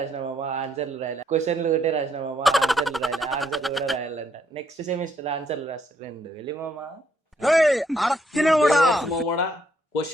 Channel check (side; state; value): both; normal; correlation 0.72